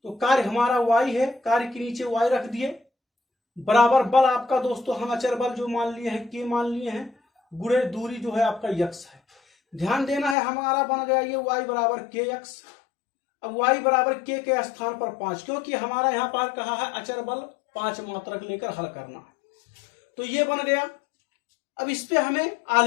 तो कार्य हमारा y है, कार्य के नीचे y रख दिए, बराबर बल आपका दोस्तों हम अचर बल जो मान लिए हैं k मान लिए हैं, गुणे दूरी जो है आपका x है। ध्यान देना है हमारा बन गया ये y बराबर kx। अब y बराबर k के स्थान पर 5, क्योंकि हमारा यहाँ पर कहा है अचर बल 5 मात्रक लेकर हल करना है, तो ये बन गया। अब इस पे हमें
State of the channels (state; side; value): drops out; right; at 10.4 s